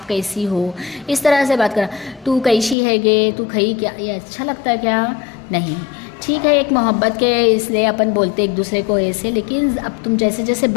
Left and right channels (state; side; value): drops out; right; at 2.8 s